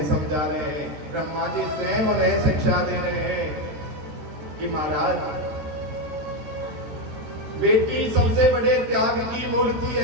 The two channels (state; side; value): late; left; 14 ms